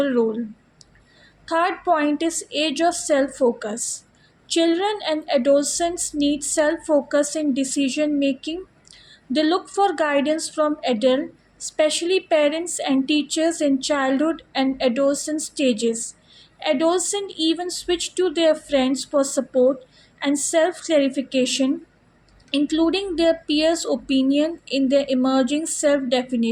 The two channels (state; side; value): identical; both; correlation 1.00